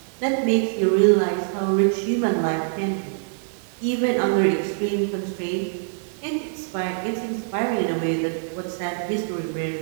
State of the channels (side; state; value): left; silent; digital silence